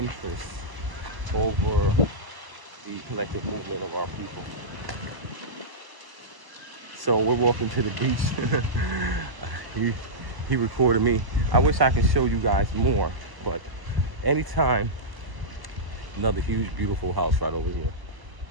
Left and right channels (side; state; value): left; late; 1.0 ms